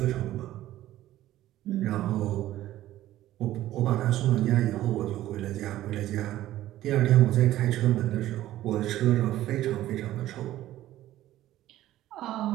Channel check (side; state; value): left; quieter; 14.2 dB